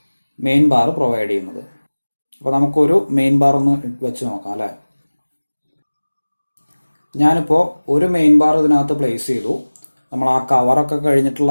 മെയിൻ ബാർ പ്രൊവൈഡ് ചെയ്യുന്നത്. അപ്പോൾ നമുക്കൊരു മെയിൻ ബാർ ഒന്ന് വെച്ച് നോക്കാം അല്ലേ. ഞാനിപ്പോൾ ഒരു മെയിൻ ബാർ ഇതിനകത്ത് പ്ലേസ് ചെയ്തു. നമ്മൾ ആ കവറൊക്കെ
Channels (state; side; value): inverted; both; correlation -1.00